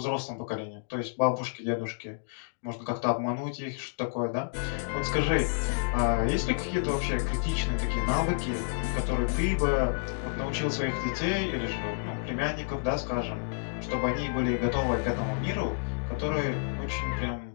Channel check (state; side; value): silent; right; digital silence